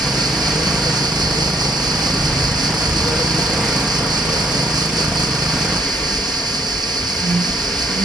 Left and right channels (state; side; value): normal; both; correlation 0.65